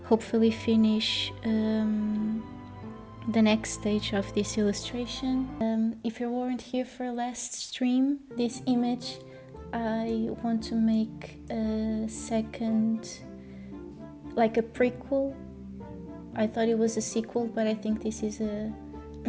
hopefully finish the next stage of this illustration. If you weren't here for last stream, this image, I want to make a second, like a prequel. I thought it was a sequel, but I think this is a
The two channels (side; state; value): both; identical; correlation 1.00